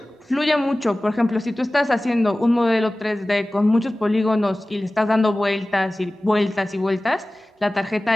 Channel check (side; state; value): both; normal; correlation 0.97